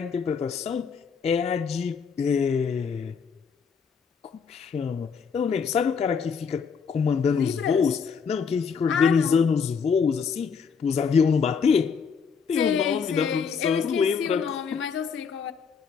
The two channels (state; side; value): quieter; right; 6.0 dB